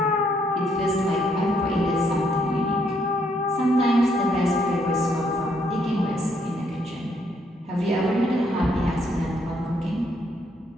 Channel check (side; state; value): both; normal; correlation 0.72